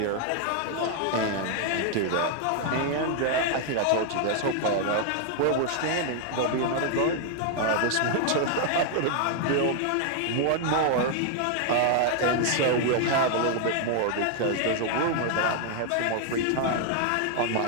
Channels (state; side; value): different; both; correlation 0.00